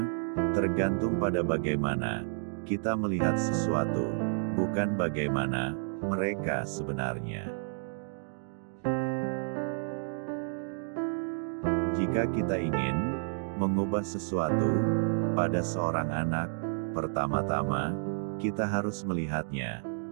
tergantung pada bagaimana kita melihat sesuatu, bukan bagaimana mereka sebenarnya. Jika kita ingin mengubah sesuatu pada seorang anak, pertama-tama kita harus melihatnya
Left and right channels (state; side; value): silent; left; 57 dB below the other